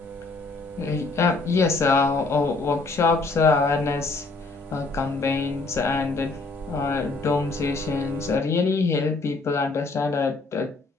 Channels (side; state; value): right; quieter; 3.5 dB